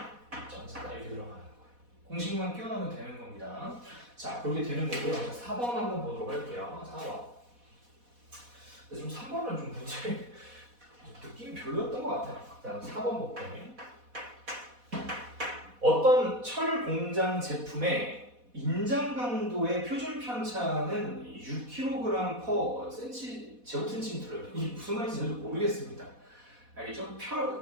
2.4다 이렇게 들어가는 거예요. 공식만 끼워넣으면 되는 겁니다. 자, 그렇게 되는 거고요. 자, 4번 한번 보도록 할게요. 4번. 근데 좀 3번은 좀 문제 느낌이 별로였던 것 같아요. 자, 4번 볼게요. 어떤 철 공장 제품의 인장 강도의 표준 편차는 6kg per 제곱센티미터예요. 이게 무슨 말인지 모르겠습니다. 알겠죠?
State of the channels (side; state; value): left; late; 4.1 ms